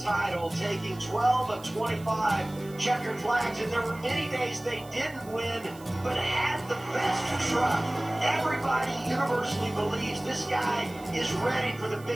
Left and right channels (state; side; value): noise; right; hiss, 22 dB below the sound